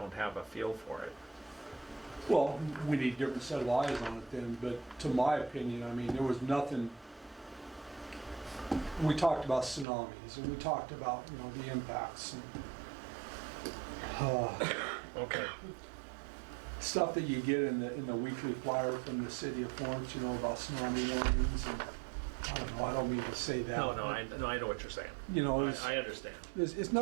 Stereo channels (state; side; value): drops out; left; at 9.9 s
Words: have a feel for it. Well, we need a different set of eyes on it then, but to my opinion, I mean, there was nothing. We talked about tsunamis and we talked about, you know, the impacts and Okay. stuff that you get in the weekly flyer from the city of Florence, you know, about tsunami warnings and, I don't know, I don't mean to say that. No, I know what you're saying. You know, it's, I understand. it's